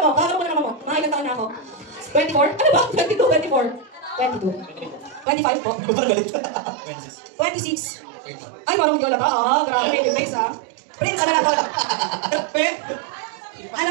mo? Kakaroon mo na naman mo. Mga ilang taon na ako. 24? Ano ba? 22, 24. 22. 25 po. 26. Ay, marunong yola pa. Ah, grabe. Yung face, ha? Prince, ano na po?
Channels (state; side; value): drops out; left; at 5.2 s